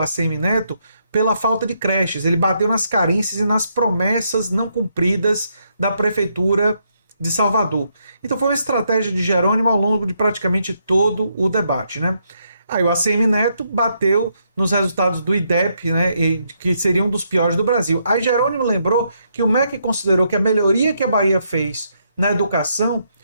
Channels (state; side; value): inverted; both; correlation -0.76